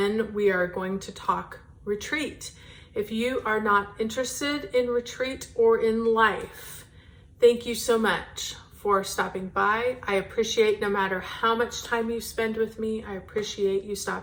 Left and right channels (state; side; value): identical; both; correlation 1.00